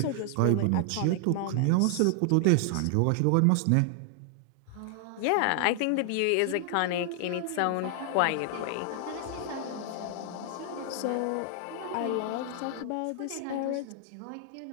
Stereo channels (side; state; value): both; different; correlation 0.00